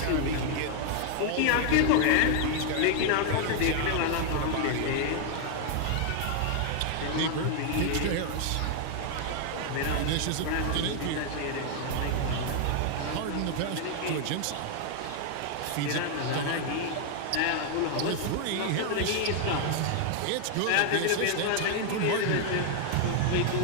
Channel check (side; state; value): both; different; correlation 0.00